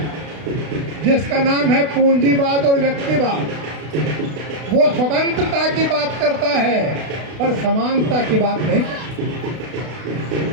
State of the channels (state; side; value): late; left; 32 ms